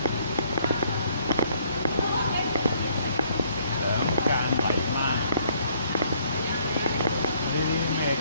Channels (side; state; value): both; inverted; correlation -0.65